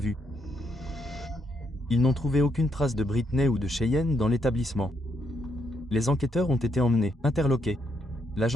Ils n'ont trouvé aucune trace de Brittany ou de Cheyenne dans l'établissement. Les enquêteurs ont été emmenés, interloqués. La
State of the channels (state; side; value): normal; both; correlation 0.76